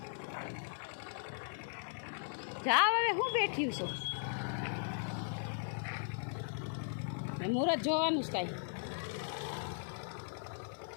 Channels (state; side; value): silent; right; 52 dB below the other